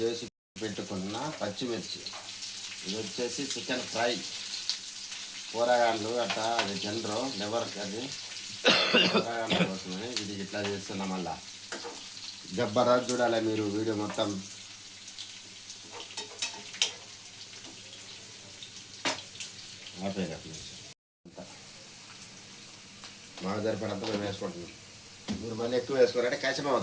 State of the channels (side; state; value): both; identical; correlation 1.00